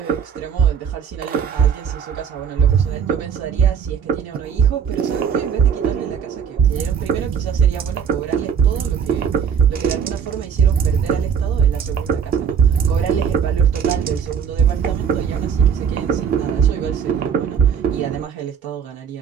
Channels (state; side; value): quieter; left; 7.4 dB